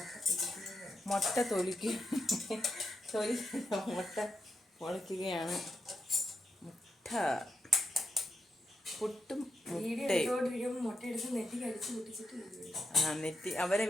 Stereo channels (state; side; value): normal; both; correlation 0.83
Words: പൊളിക്കുകയാണ്. പുട്ടും നെറ്റി അവരെ